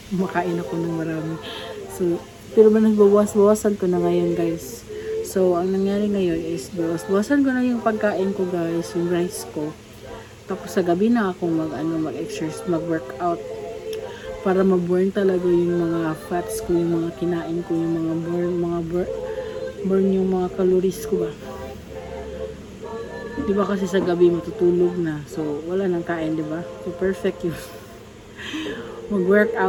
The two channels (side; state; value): both; identical; correlation 1.00